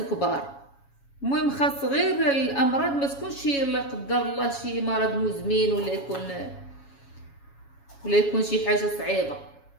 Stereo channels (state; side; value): late; right; 7.2 ms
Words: المهم خاص غير الامراض ما تكونش لا قدر الله شي مرض مزمن ولا يكون شي حاجه صعيبه.